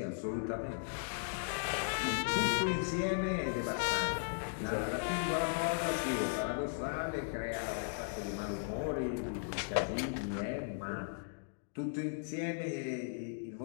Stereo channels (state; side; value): silent; right; digital silence